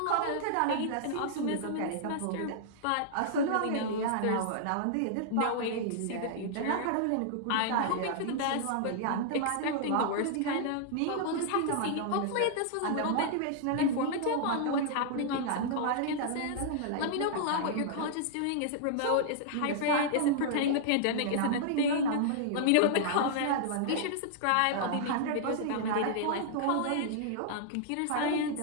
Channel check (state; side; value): different; both; correlation -0.01